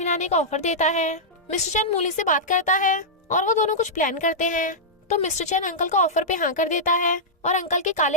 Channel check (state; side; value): normal; both; correlation -0.10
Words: का ऑफर देता है। मिस्टर चैन मूली से बात करता है और वो दोनों कुछ प्लान करते हैं। तो मिस्टर चैन अंकल का ऑफर पे हाँ कर देता है और अंकल के